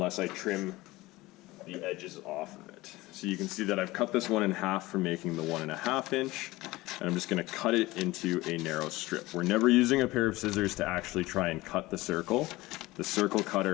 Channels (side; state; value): right; quieter; 19.6 dB